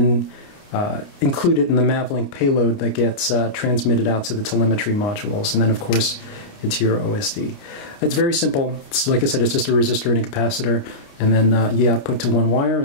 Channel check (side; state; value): right; late; 29 ms